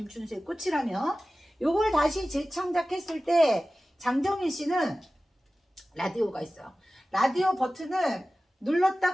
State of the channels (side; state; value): both; normal; correlation 0.96